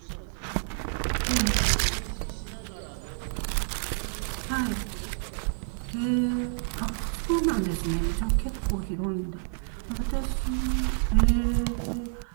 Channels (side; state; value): left; silent; 59 dB below the other